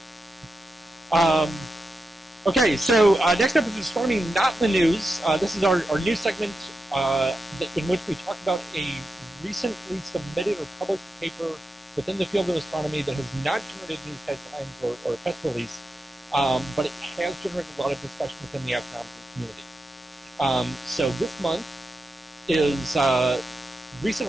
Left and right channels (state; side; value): normal; both; correlation 0.89